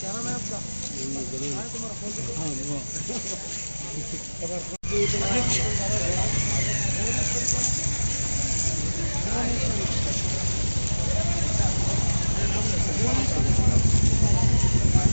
नाम है आपका? तुम्हारा फोन? हाँ वो।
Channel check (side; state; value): both; inverted; correlation -1.00